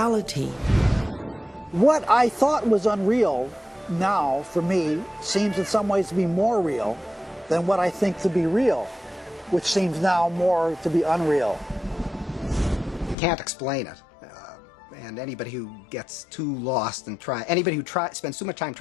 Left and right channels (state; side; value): drops out; right; at 13.2 s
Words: What I thought was unreal now, for me, seems in some ways to be more real than what I think to be real, which seems now more to be unreal. You can't explain it. And anybody who gets too lost and anybody who spends too much time